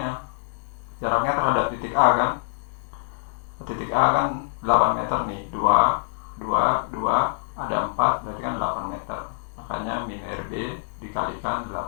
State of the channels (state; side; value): silent; right; digital silence